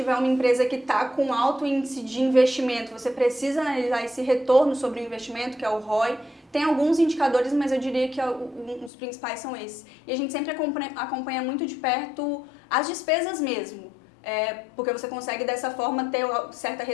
uma empresa que está com alto índice de investimento, você precisa analisar esse retorno sobre o investimento, que é o ROI. Tem alguns indicadores, mas eu diria que os principais são esses. E a gente sempre acompanha muito de perto as despesas mesmo. Porque você consegue dessa forma ter certa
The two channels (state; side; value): drops out; right; at 8.9 s